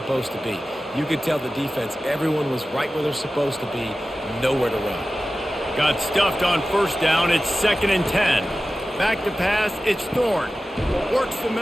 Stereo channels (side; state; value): both; normal; correlation 0.95